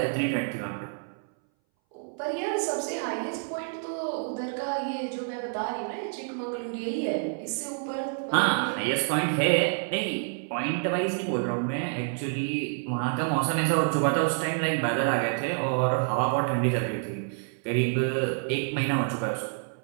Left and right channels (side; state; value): left; silent; 59 dB below the other